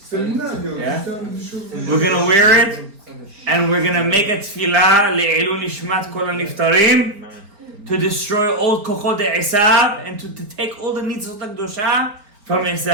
Yeah. We're gonna wear it, and we're gonna make a tefillah le'ilun nishmat kol haniftarim, to destroy all kochot Esav and to take all the nitzot HaKdosha from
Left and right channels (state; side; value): late; left; 4.4 ms